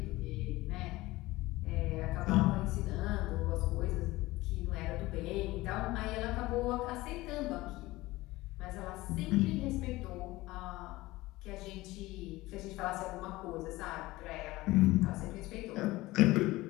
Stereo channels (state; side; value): quieter; right; 19.2 dB